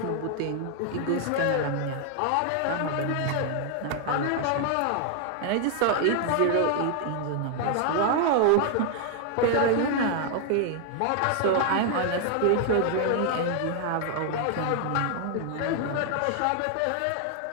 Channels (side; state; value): both; different; correlation 0.00